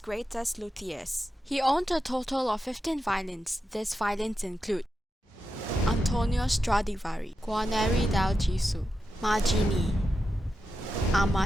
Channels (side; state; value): both; normal; correlation 0.89